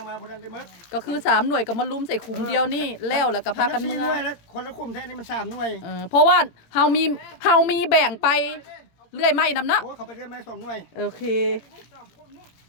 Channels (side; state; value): right; late; 18 ms